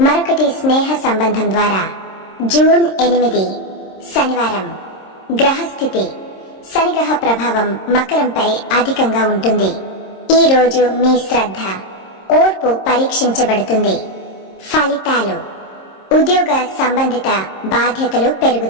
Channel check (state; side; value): late; right; 26 ms